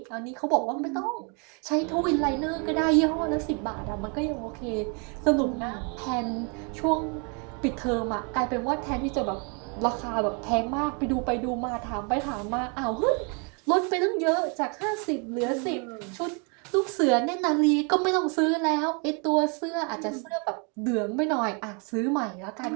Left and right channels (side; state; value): left; quieter; 35.6 dB